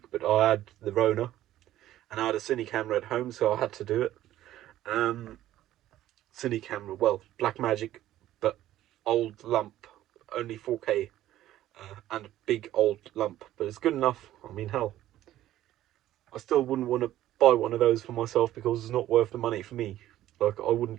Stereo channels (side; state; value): left; quieter; 13.6 dB